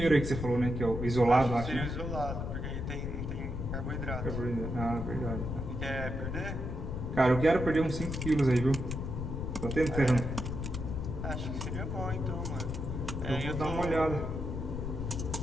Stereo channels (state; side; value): noise; left; rumble, 4 dB below the sound